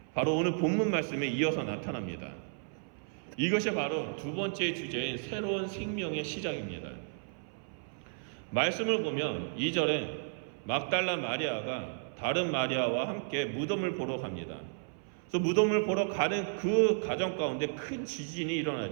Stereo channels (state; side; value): silent; left; 56 dB below the other